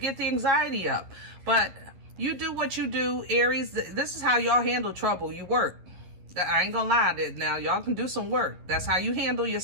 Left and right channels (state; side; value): late; left; 11 ms